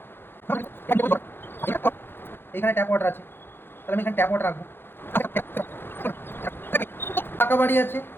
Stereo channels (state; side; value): late; right; 0.10 ms